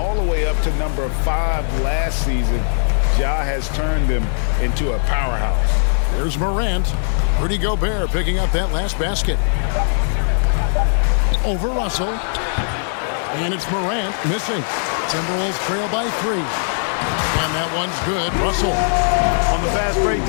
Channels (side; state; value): right; silent; digital silence